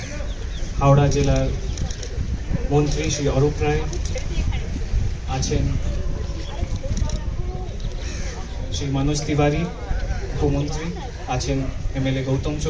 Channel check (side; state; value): both; identical; correlation 1.00